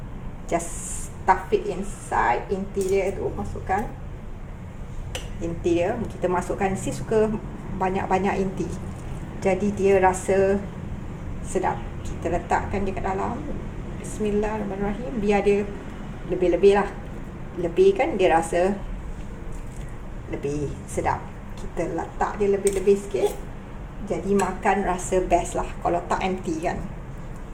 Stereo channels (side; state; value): both; identical; correlation 1.00